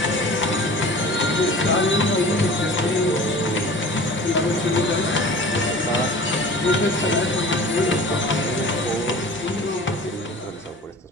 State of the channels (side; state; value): both; normal; correlation 0.41